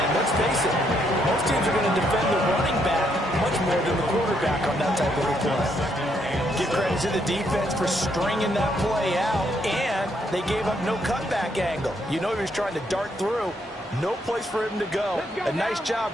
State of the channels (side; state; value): both; normal; correlation 0.74